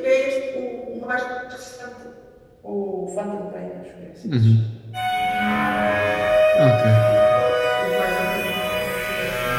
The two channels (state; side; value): identical; both; correlation 1.00